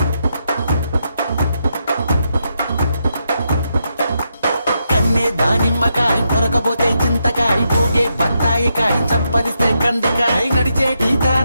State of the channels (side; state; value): both; inverted; correlation -0.82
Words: కన్నే దానిమ్మకాయ కొరకబోతే చింతకాయ ఊగే బత్తాయికాయ చప్పరిస్తే కందికాయ నడిచేటి